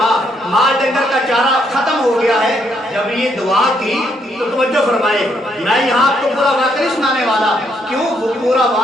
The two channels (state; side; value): normal; both; correlation 0.73